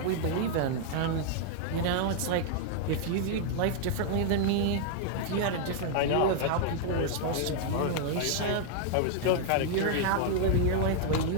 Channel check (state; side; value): different; both; correlation 0.00